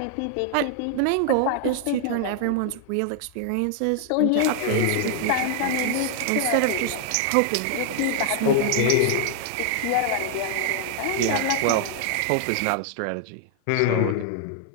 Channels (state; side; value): different; both; correlation 0.00